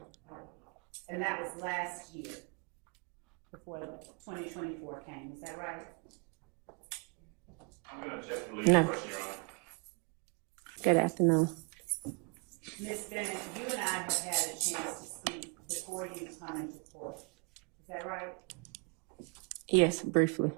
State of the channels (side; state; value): left; quieter; 31.6 dB